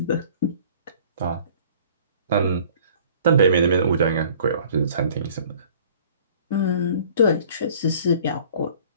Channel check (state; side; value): inverted; both; correlation -0.52